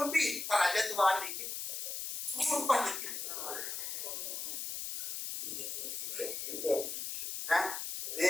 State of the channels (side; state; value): left; noise; hiss, 4 dB below the sound